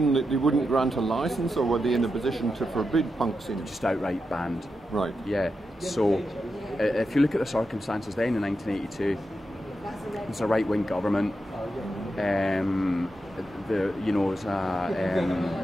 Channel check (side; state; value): both; normal; correlation 0.87